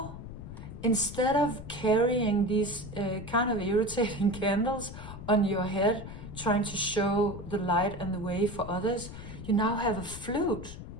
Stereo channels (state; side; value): noise; left; rumble, 11 dB below the sound